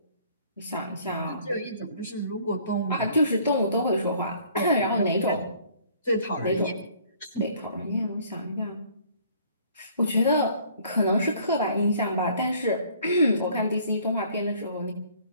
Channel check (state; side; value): inverted; both; correlation -0.57